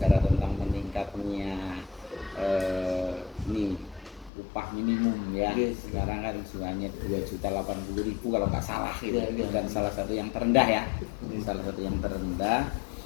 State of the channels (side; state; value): right; drops out; at 4.3 s